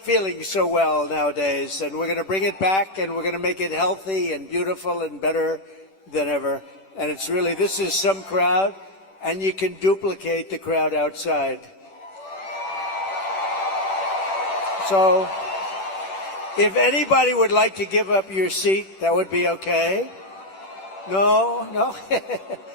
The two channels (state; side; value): late; right; 10 ms